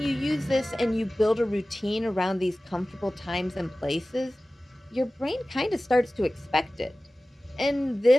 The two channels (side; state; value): both; normal; correlation 0.97